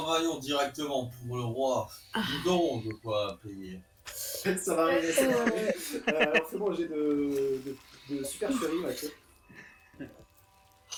directement pour le roi. Nous aurons de quoi payer. Ça va arriver, ça va arriver. Alors c'est bon, j'ai de supercherie, Mathieu.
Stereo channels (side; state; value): both; identical; correlation 1.00